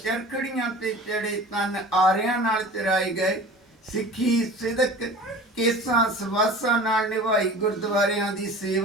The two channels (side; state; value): both; normal; correlation 0.40